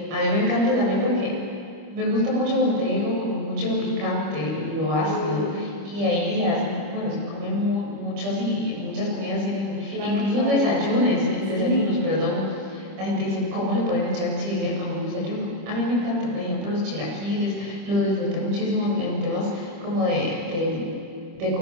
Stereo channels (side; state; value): left; late; 25 ms